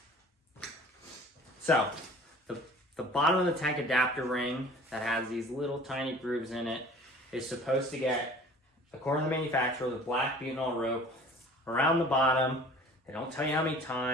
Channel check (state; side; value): normal; both; correlation 0.47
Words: So, the bottom of the tank adapter ring that has these little tiny grooves in it is supposed to get, according to the manufacturer, the black butanol rope around the bottom. They don't tell you how many